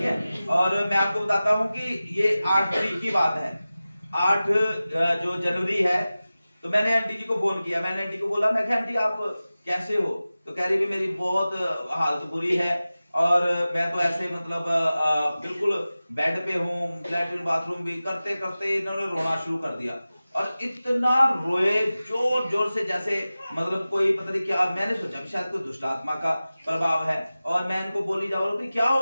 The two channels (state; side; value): inverted; both; correlation -0.96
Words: है। और मैं आपको बताता हूं कि ये 8 तारीख की बात है, 8 जो जनवरी है। तो मैंने आंटी जी को फोन किया। मैंने आंटी को बोला, मैं आंटी आप कैसे हो? तो कह रही भी मेरी बहुत हालत बुरी है और मैं तो ऐसे मतलब बिल्कुल बेड पे हूँ, लैट्रिन बाथरूम भी करते करते इन्होंने रोना शुरू कर दिया। और इतना रोए जोर जोर से, जैसे मतलब कोई पता नहीं क्या। मैंने सोचा शायद कोई दुष्ट आत्मा का प्रभाव है। और मैं इनको बोली जा रहा हूँ कि क्या हो